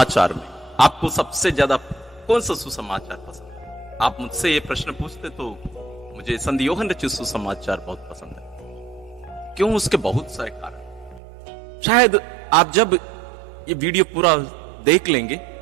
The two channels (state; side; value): drops out; left; at 11.2 s